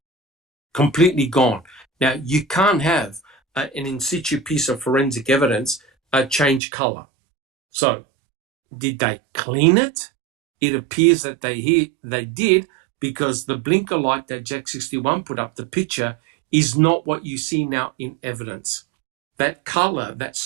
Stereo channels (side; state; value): left; drops out; at 6.6 s